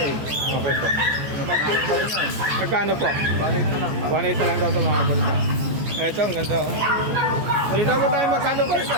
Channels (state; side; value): late; left; 14 ms